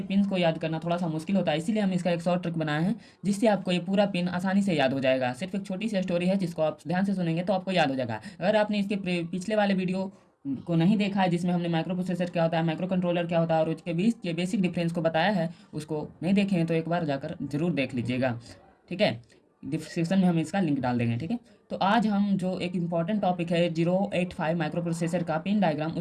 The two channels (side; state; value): both; identical; correlation 1.00